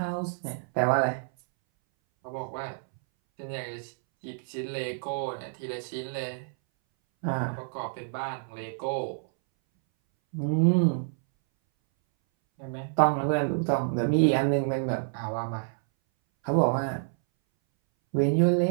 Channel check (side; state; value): left; silent; 59 dB below the other